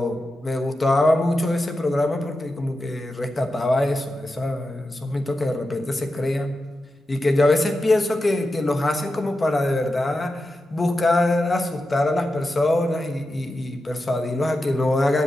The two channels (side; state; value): both; normal; correlation 0.90